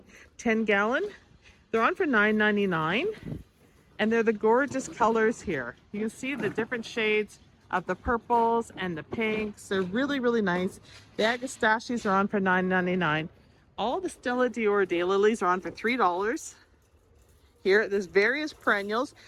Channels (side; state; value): both; identical; correlation 1.00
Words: 10-gallon? They're on for $9.99. And they're the gorgeous colors here. You can see the different shades of the purples and the pinks. They're really, really nice. The Agastaches are on for $9.99. All the Stella Dior daylilies are on for $3. Here, there's various perennials.